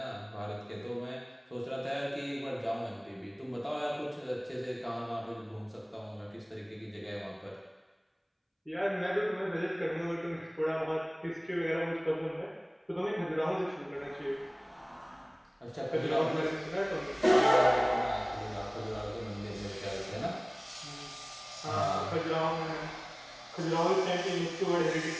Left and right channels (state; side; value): identical; both; correlation 1.00